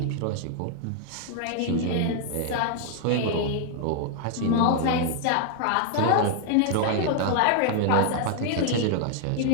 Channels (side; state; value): both; different; correlation 0.00